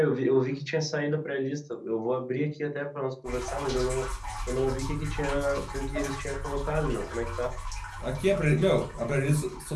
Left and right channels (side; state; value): both; identical; correlation 1.00